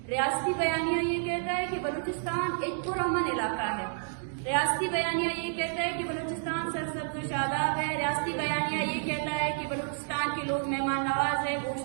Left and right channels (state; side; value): silent; left; digital silence